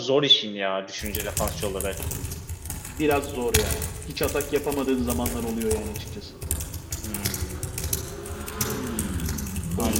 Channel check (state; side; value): identical; both; correlation 1.00